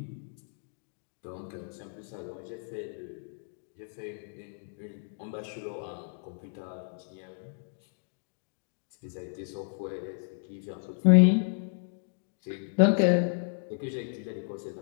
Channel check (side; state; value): right; silent; digital silence